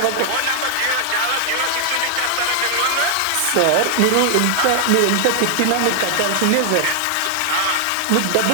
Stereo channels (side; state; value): both; different; correlation 0.00